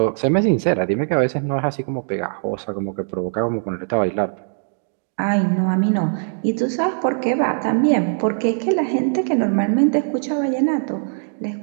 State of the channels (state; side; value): silent; left; digital silence